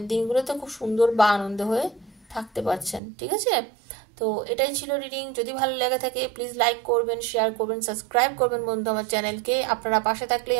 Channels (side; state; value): left; drops out; at 3.0 s